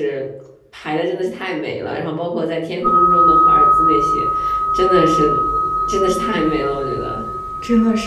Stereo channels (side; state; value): both; identical; correlation 1.00